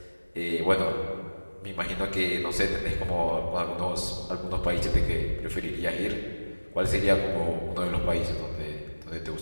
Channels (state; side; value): inverted; both; correlation -1.00